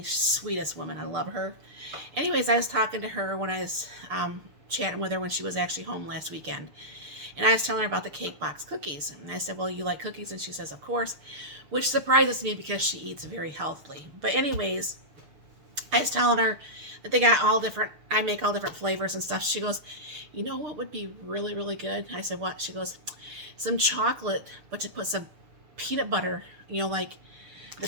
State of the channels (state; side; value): late; left; 6.7 ms